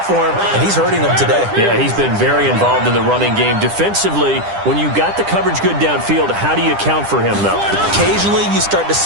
for him, and he's hurting them today. Yeah, he's been very involved in the running game. Defensively, when you got the coverage good downfield, how do you account for him, though? Occasionally, you start to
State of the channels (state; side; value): late; left; 10 ms